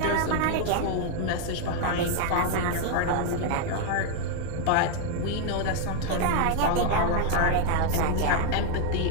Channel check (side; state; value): both; different; correlation 0.00